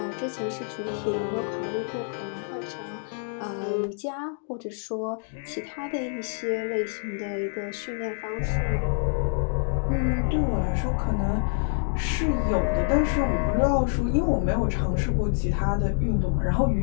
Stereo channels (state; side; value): silent; right; 60 dB below the other